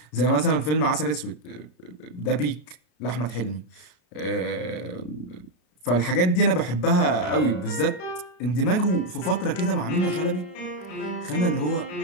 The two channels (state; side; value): late; right; 33 ms